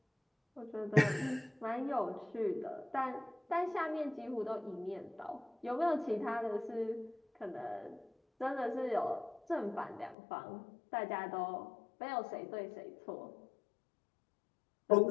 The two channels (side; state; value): right; drops out; at 10.2 s